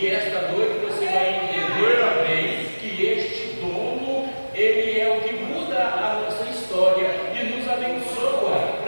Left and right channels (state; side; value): inverted; both; correlation -1.00